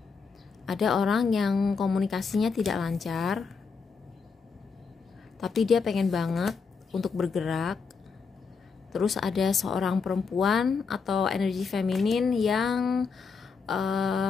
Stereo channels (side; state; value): right; quieter; 5.2 dB